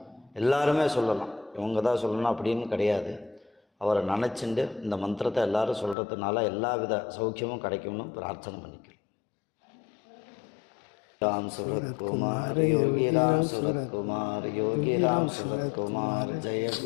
எல்லாருமே சொல்லலாம். இவங்க தான் சொல்லணும் அப்படின்னு கிடையாது. அவரை நினச்சிண்டு இந்த மந்திரத்தை எல்லோரும் சொல்கிறதுனால எல்லா வித சௌக்கியமும் கிடைக்கும்னு பிரார்த்தனை பண்ணிக்கிறோம். ராம் சுரத்குமார் யோகி ராம் சுரத்குமார் யோகி ராம் சுரத்குமார் ஜெய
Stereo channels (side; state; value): right; drops out; at 6.0 s